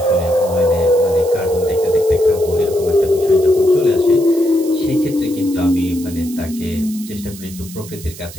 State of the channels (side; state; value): right; noise; hiss, 16 dB below the sound